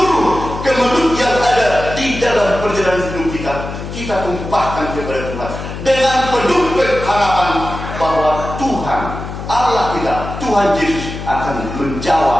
kemelut yang ada di dalam perjalanan hidup kita tumpahkan kepada Tuhan dengan penuh harapan bahwa Tuhan Allah kita, Tuhan Yesus akan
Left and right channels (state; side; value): noise; left; hum, 8 dB below the sound